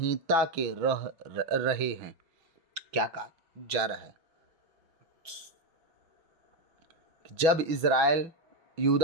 के रहे हैं। क्या कहा जा रहा है? जब इज़राइल,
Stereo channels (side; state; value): left; late; 6.2 ms